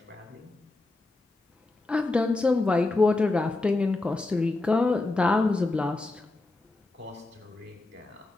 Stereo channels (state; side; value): quieter; right; 3.1 dB